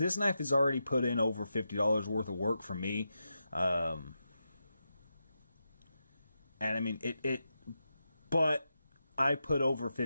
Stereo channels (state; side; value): inverted; both; correlation -0.88